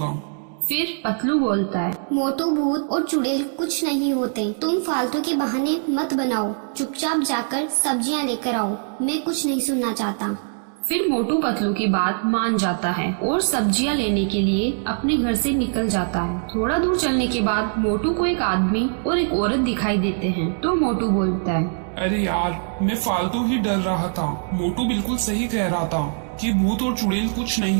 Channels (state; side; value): silent; left; digital silence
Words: फिर पतलू बोलता है, मोटू, भूत और चुड़ैल कुछ नहीं होते, तुम फालतू के बहाने मत बनाओ, चुपचाप जाकर सब्जियां लेकर आओ, मैं कुछ नहीं सुनना चाहता। फिर मोटू पतलू की बात मान जाता है और सब्जियां लेने के लिए अपने घर से निकल जाता है। थोड़ा दूर चलने के बाद मोटू को एक आदमी और एक औरत दिखाई देते हैं तो मोटू बोलता है, अरे यार, मैं फालतू ही डर रहा था। मोटू बिल्कुल सही कह रहा था कि भूत और चुड़ैल कुछ